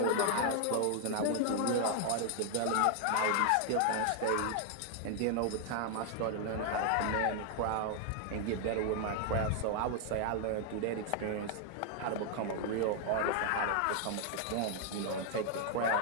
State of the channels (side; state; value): both; different; correlation 0.00